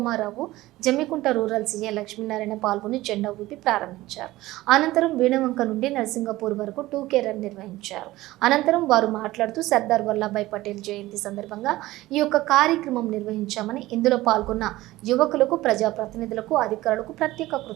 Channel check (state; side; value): quieter; left; 17.5 dB